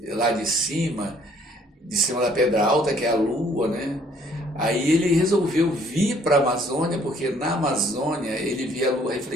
lá de cima da pedra alta, que é a lua, né? Aí ele resolveu vir para a Amazônia, porque na Amazônia ele via a lua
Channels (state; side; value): normal; both; correlation 0.61